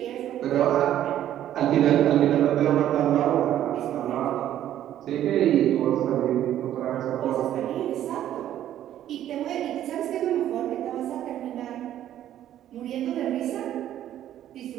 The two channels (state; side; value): quieter; left; 11.8 dB